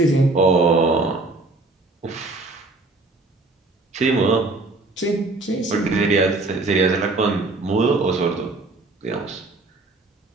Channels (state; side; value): quieter; left; 3.3 dB